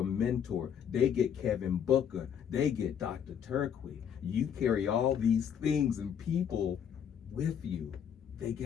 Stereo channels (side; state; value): right; quieter; 8.4 dB